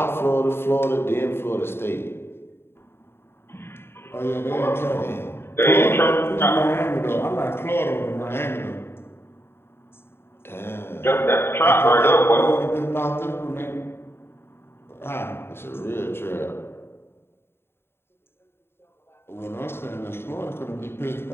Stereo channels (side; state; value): right; late; 0.11 ms